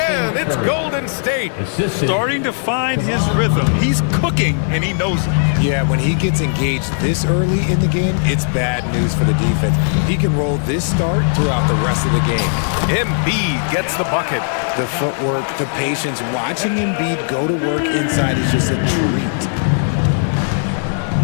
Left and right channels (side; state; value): right; silent; digital silence